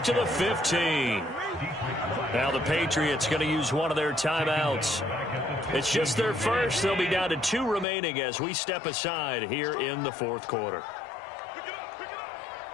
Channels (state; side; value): drops out; right; at 7.9 s